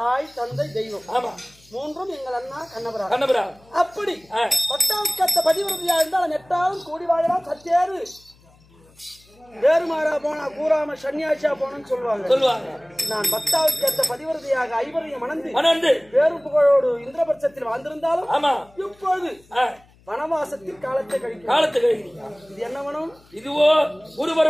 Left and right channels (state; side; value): noise; left; hum, 29 dB below the sound